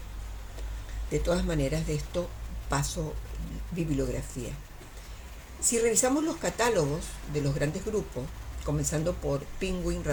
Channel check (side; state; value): both; identical; correlation 1.00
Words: De todas maneras, de esto paso bibliografía. Si revisamos los catálogos de los grandes grupos, comenzando por Penguin